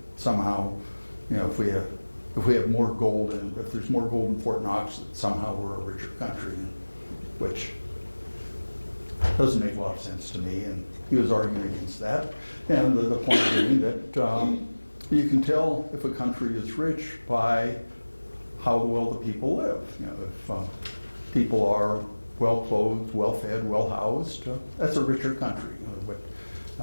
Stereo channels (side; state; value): both; inverted; correlation -1.00